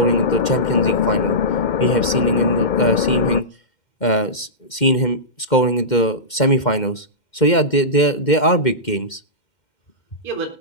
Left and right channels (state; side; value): late; right; 2.1 ms